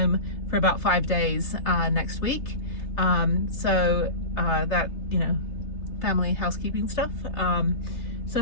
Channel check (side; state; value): right; late; 3.3 ms